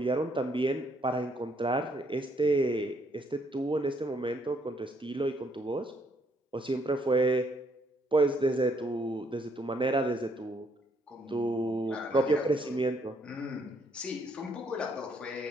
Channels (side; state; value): both; normal; correlation 0.70